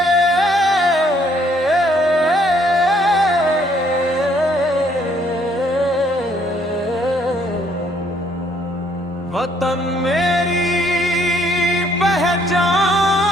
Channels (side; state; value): both; normal; correlation 0.66